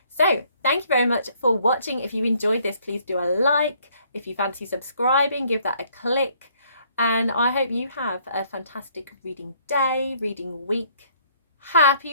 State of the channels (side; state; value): both; inverted; correlation -0.64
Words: So thank you very much for watching. If you enjoyed this, please do a like. If you fancy subscribing, give that a click. And I hope you have a fantastic reading day, reading week.